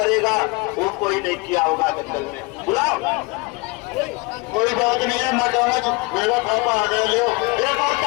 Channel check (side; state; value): right; quieter; 26.0 dB